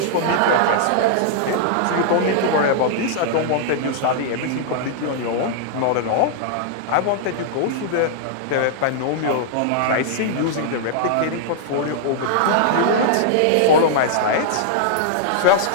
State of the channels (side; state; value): both; different; correlation -0.01